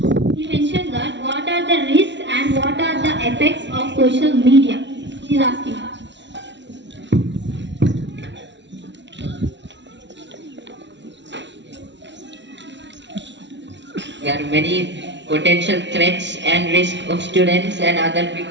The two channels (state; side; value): late; left; 0.52 ms